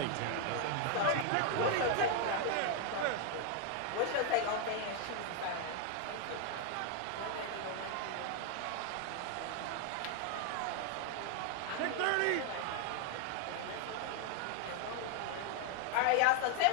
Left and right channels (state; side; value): different; both; correlation 0.00